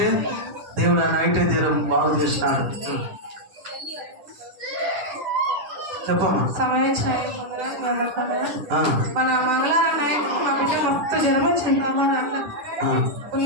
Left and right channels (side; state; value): left; late; 10 ms